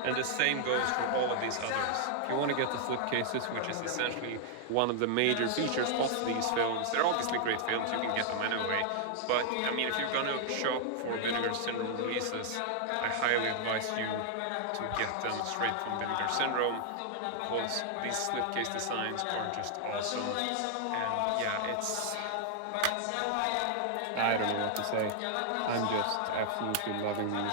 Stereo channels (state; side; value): different; both; correlation -0.01